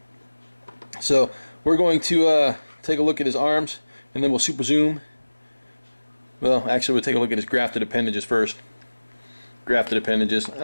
So we're going to take a look at his arms, and then we'll super zoom. Well, actually, we'll take a look at his grafted appendages first. Grafted appendages.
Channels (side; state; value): both; inverted; correlation -1.00